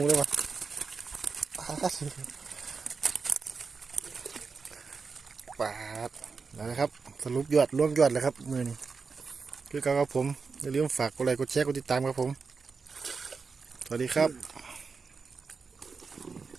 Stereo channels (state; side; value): quieter; left; 4.9 dB